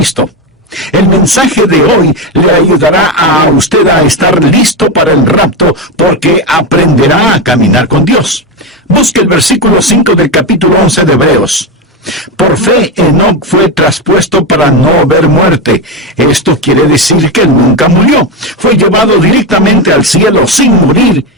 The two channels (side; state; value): both; normal; correlation 0.13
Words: El mensaje de hoy le ayudará a usted a estar listo para el rapto porque aprenderá a caminar con Dios. Busque el versículo 5 del capítulo 11 de Hebreos. Por fe, Enoc fue traspuesto para no ver muerte. Esto quiere decir que él nunca murió. Fue llevado directamente al cielo sin morir